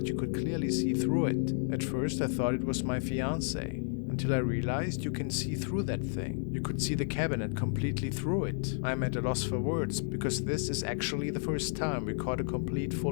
you could clearly see through it. At first I thought it was my fiancé, until I realized you can see through that thing. You could see the cabinet completely through it. I'm at a loss for words, because this is actually the first time we caught a complete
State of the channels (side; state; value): right; silent; digital silence